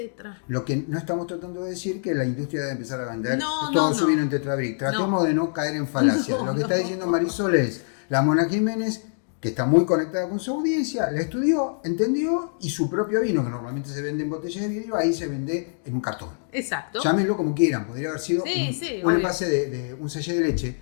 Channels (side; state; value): right; silent; digital silence